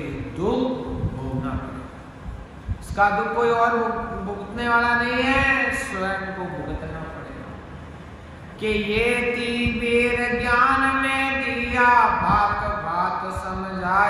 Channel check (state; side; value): identical; both; correlation 1.00